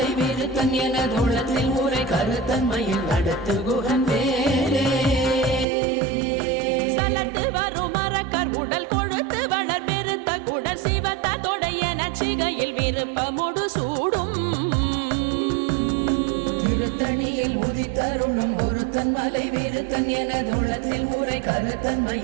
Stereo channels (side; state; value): left; drops out; at 5.7 s